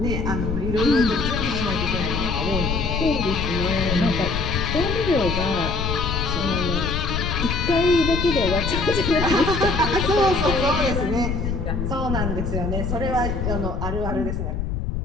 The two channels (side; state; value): left; noise; rumble, 2 dB below the sound